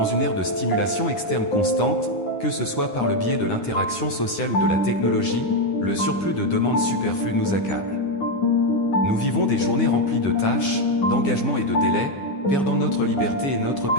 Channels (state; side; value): late; right; 9.8 ms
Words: une ère de stimulation externe constante, que ce soit par le biais de l'interaction sociale ou de la technologie, le surplus de demandes superflues nous accable. Nous vivons des journées remplies de tâches, d'engagements et de délais, perdant notre liberté et notre